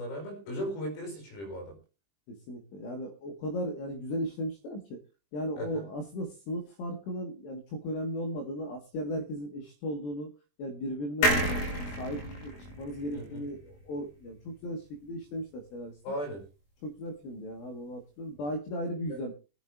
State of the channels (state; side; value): late; right; 20 ms